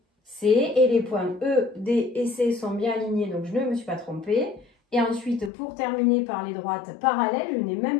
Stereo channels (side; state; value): right; drops out; at 5.5 s